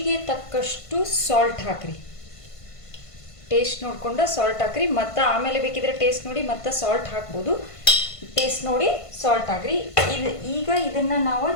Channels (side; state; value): right; late; 1.5 ms